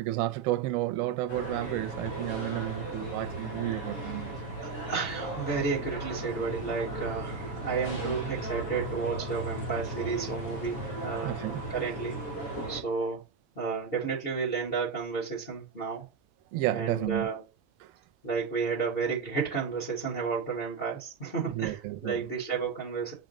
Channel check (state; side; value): quieter; left; 5.6 dB